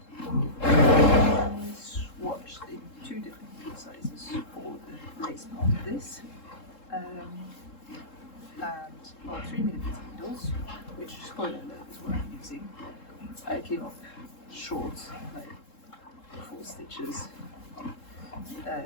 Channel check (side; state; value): right; late; 3.7 ms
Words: I swatched in 2 different sizes for the lace part of this. And 3mm needles, which, spoiler alert, is what I'm using. I came up short, like 4 stitches,